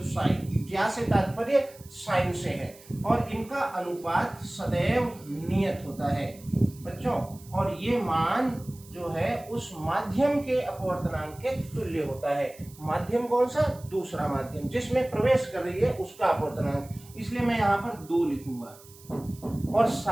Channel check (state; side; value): noise; right; hiss, 22 dB below the sound